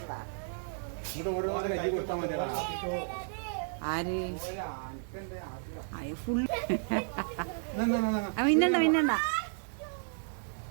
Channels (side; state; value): left; silent; digital silence